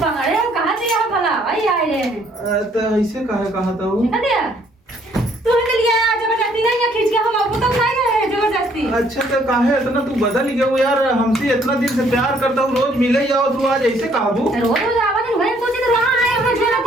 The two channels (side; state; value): both; normal; correlation 0.64